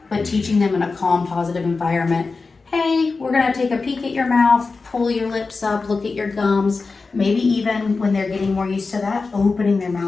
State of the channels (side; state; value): right; quieter; 4.1 dB